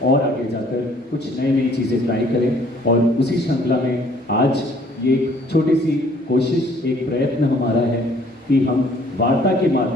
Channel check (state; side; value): normal; both; correlation 0.59